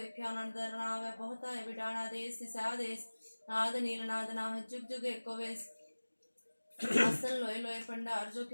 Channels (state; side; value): inverted; both; correlation -1.00